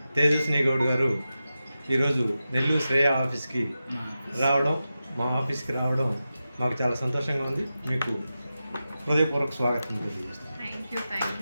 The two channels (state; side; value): inverted; both; correlation -0.92